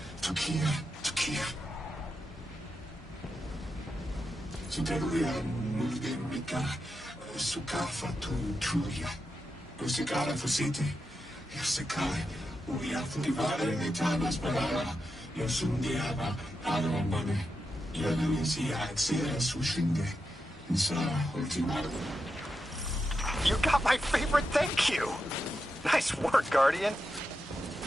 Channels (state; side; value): normal; both; correlation 0.87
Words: Tukia. Suderuya Mulgemika Sukafa Tuya. Usikara Fusite. Yasakai. Uya Fudivare Nitanas Balara. Yosundiaba Alamone. Yaluisia Xera Sushinde. Insara Ultimata. You got my favorite thank you! Nice work, Guardian.